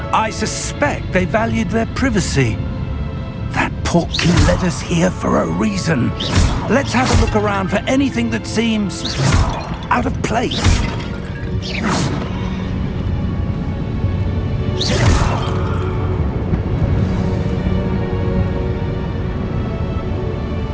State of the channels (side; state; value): both; identical; correlation 1.00